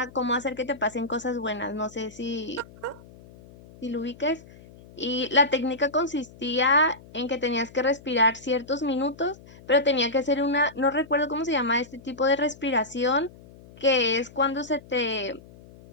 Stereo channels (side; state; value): left; noise; hum, 21 dB below the sound